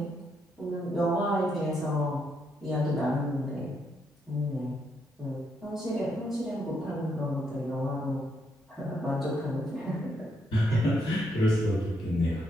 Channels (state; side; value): normal; both; correlation 0.76